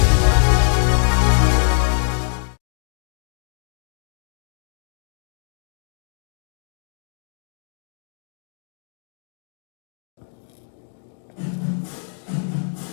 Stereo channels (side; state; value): right; silent; 60 dB below the other